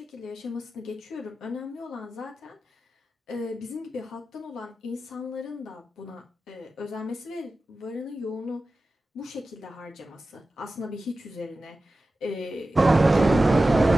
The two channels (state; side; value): normal; both; correlation 0.94